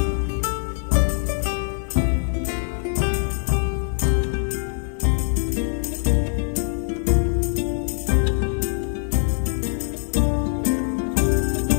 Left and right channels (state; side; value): silent; right; digital silence